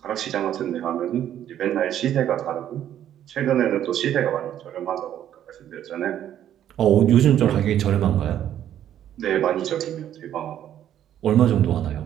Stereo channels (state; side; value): quieter; left; 10.9 dB